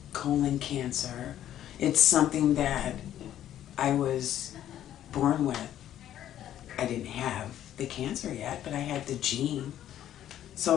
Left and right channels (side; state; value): right; quieter; 11.6 dB